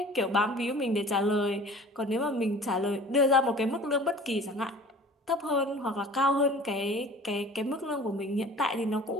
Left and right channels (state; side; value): normal; both; correlation 0.45